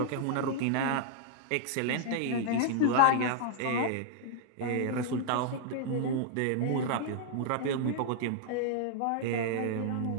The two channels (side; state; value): both; different; correlation 0.00